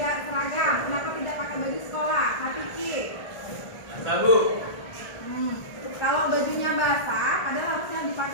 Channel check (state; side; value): late; right; 1.4 ms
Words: seragam? Kenapa tidak pakai baju sekolah? Kak Piki. Bu. Kalau bajunya basah, padahal harusnya